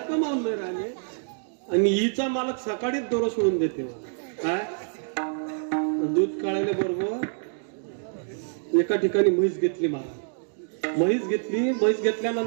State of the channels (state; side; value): silent; left; digital silence